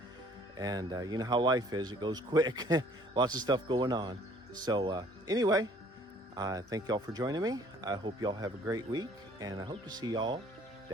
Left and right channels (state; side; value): normal; both; correlation 0.56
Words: and you know how life is, it goes quick. Lots of stuff going on. So anyway, thank y'all for joining me. I hope y'all have a great week, and I hope to see y'all